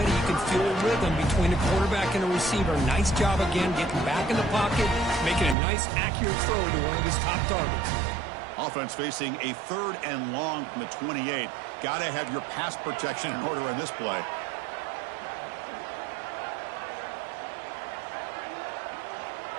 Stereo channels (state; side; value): drops out; left; at 5.6 s